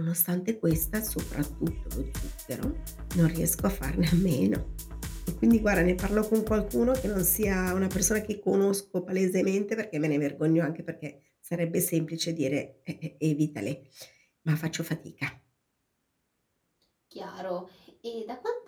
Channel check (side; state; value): both; identical; correlation 1.00